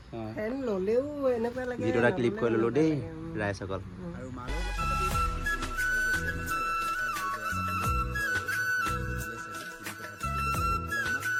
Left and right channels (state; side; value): identical; both; correlation 1.00